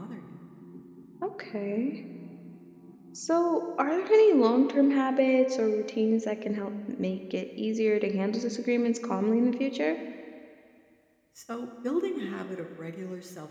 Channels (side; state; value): both; identical; correlation 1.00